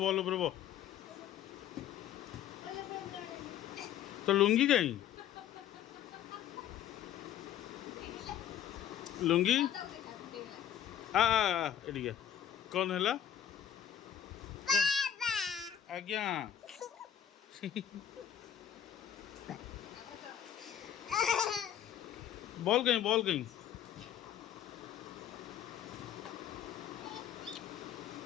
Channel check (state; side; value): quieter; right; 10.0 dB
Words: बॉल उपर बो तो लुंगी कहीं लुंगी एडिया कौन है आज्ञा बॉल कहीं